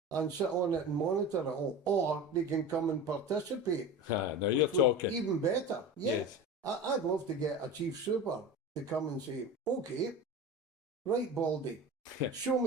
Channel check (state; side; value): normal; both; correlation 0.31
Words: and sit on it and monitor it all. Or they can come and participate. Now you're talking. Even better. Yeah. Yes. I'd love to get a chief super to come and say, okay, right, Baldy, show